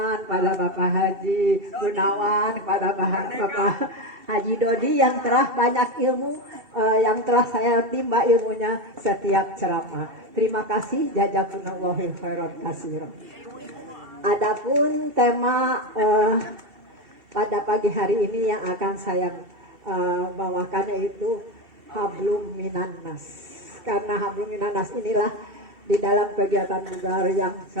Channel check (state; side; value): late; left; 2.7 ms